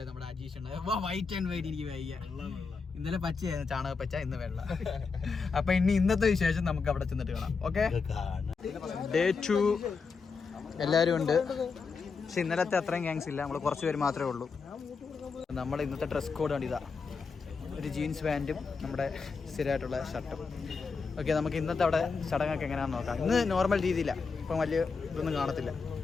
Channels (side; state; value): right; quieter; 4.9 dB